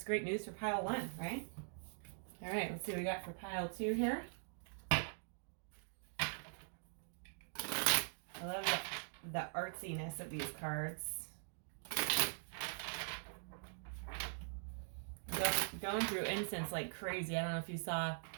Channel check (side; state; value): left; silent; digital silence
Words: great news for pile one, right? All right, let's see what we got for pile two here. I love the artsiness of these cards. Going through incense like crazy. I don't know if you saw